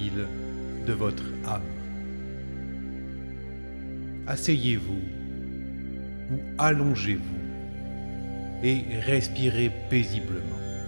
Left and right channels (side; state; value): both; inverted; correlation -1.00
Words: de votre âme. Asseyez-vous ou allongez-vous et respirez paisiblement.